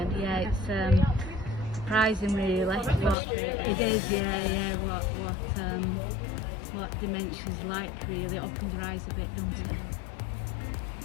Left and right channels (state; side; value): drops out; right; at 3.2 s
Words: Yeah, it's surprising really. It is, yeah. What dementia's like really. It opens your eyes a bit, doesn't